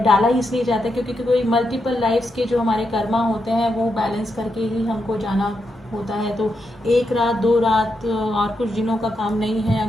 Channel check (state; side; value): normal; both; correlation 0.83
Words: डाला ही इसलिए जाता है क्योंकि कोई मल्टीपल लाइफ्स के जो हमारे कर्मा होते हैं वो बैलेंस करके ही हमको जाना होता है। तो एक रात दो रात और कुछ दिनों का काम नहीं है।